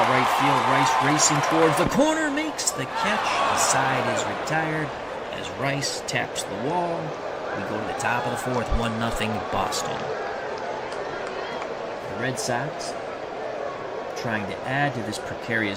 right field. Rice racing towards the corner, makes the catch. The side is retired as Rice taps the wall. We go to the top of the fourth, 1-0 Boston. The Red Sox trying to add to this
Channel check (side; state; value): both; identical; correlation 1.00